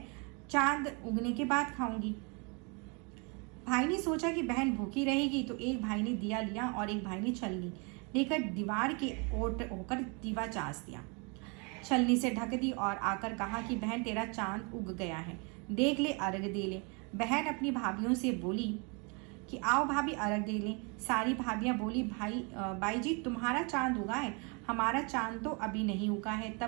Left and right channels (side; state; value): left; quieter; 32.6 dB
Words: चांद उगने के बाद खाऊंगी। भाई ने सोचा कि बहन भूखी रहेगी, तो एक भाई ने दिया लिया और एक भाई ने छलनी लेकर दीवार के ओट होकर दीवा चास दिया। छलनी से ढक दी और आकर कहा कि बहन तेरा चांद उग गया है, देख ले, अर्घ दे ले। बहन अपनी भाभीियों से बोली कि आओ भाभी अर्घ दे लें। सारी भाभियां बोली बाई जी तुम्हारा चांद उगा है, हमारा चांद तो अभी नहीं उगा है।